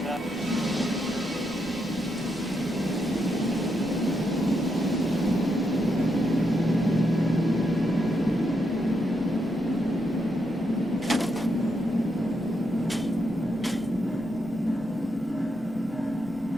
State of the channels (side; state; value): both; normal; correlation 0.81